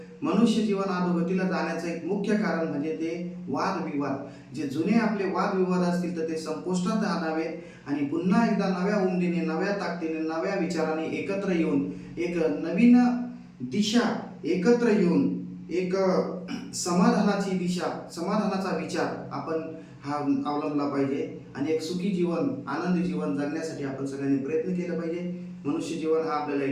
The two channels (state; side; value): identical; both; correlation 1.00